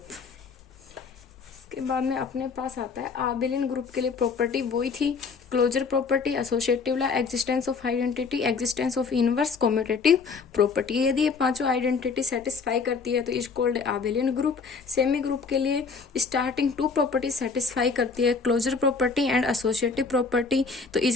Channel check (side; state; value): right; quieter; 5.0 dB